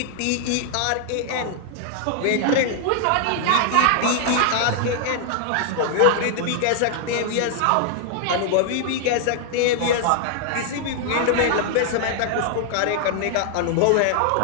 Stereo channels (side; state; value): both; different; correlation 0.00